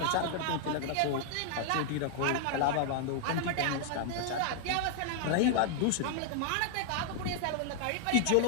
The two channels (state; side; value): different; both; correlation -0.01